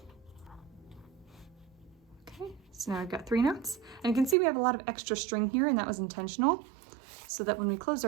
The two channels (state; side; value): drops out; left; at 4.4 s